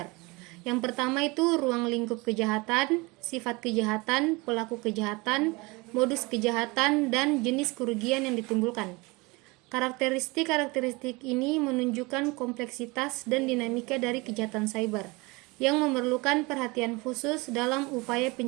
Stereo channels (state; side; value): quieter; left; 25.1 dB